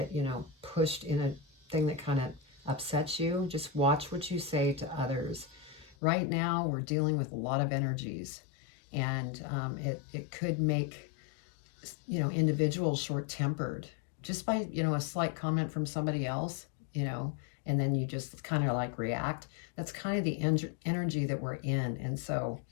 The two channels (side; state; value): right; drops out; at 6.0 s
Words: pushed in a thing that kind of upsets you, just watch what you say to others. Right now, we're dealing with a lot of energies, and it could make, individuals short-tempered just by, a slight comment from somebody else, and then you just kind of like react. That's kind of the energy that we're in, and so